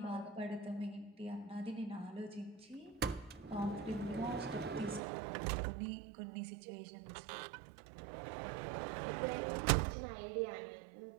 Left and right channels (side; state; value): left; drops out; at 5.0 s